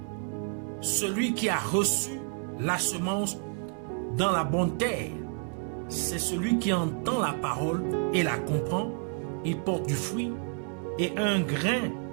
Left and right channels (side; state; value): left; quieter; 39.5 dB